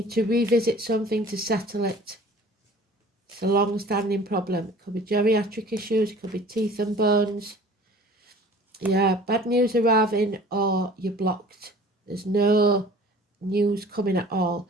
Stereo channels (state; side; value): normal; both; correlation 0.47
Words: to revisit something to settle it. It's a long-standing problem. It could be geriatric issues, it could be teeth and bones. Yeah, bad news arriving, or you're blocked. There's no news coming at all.